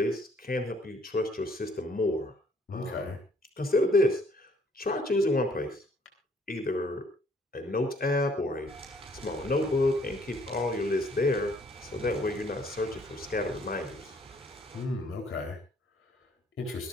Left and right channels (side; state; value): both; normal; correlation 0.64